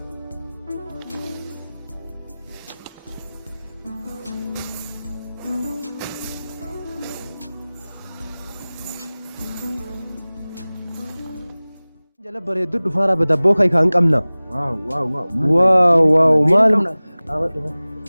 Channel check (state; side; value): inverted; both; correlation -0.99